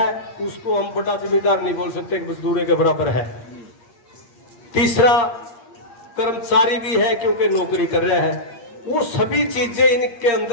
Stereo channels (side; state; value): right; late; 8.6 ms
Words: उसको हम बड़ा जमींदार नहीं बोल सकते, मजदूर के बराबर है। तीसरा कर्मचारी भी है क्योंकि नौकरी कर रहा है। वो सभी चीजें इनके